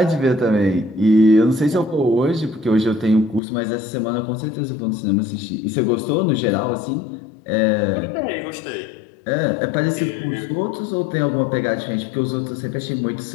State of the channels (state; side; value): drops out; right; at 3.4 s